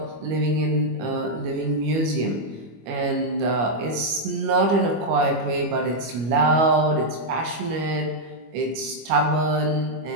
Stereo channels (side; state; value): left; late; 25 ms